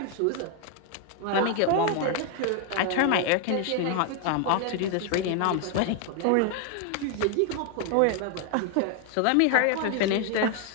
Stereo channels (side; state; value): both; different; correlation 0.00